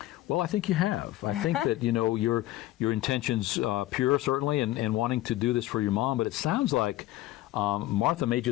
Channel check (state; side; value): quieter; right; 15.7 dB